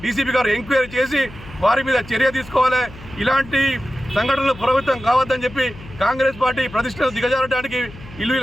డీసీపీ గారు ఎంక్వైరీ చేసి వారి మీద చర్య తీసుకోవాలి. ఇలాంటి సంఘటనలు పునరావృతం కావద్దని చెప్పి కాంగ్రెస్ పార్టీ ప్రతిష్టను దిగజారడానికి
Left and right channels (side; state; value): left; noise; hum, 18 dB below the sound